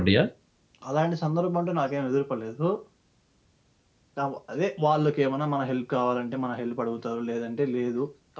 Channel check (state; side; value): identical; both; correlation 1.00